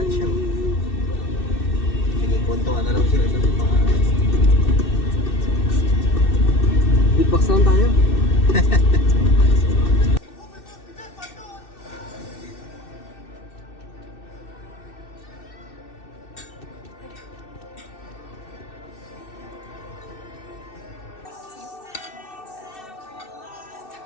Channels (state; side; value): late; right; 2.6 ms